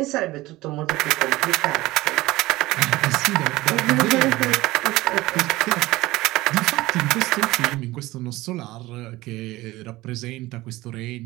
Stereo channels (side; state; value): left; quieter; 18.7 dB